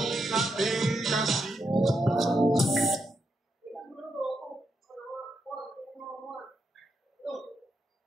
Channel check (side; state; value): both; normal; correlation 0.82